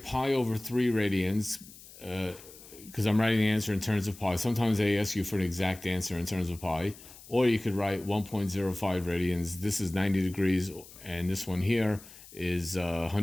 over 3 radians because I'm writing the answer in terms of pi. Sometimes they ask you for an exact answer in terms of pi. Or you could write 1.05 radians. This is 90 degrees, and this one here is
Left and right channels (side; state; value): left; noise; hiss, 19 dB below the sound